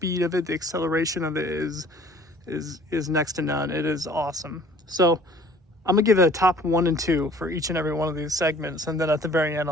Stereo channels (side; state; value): both; normal; correlation 0.52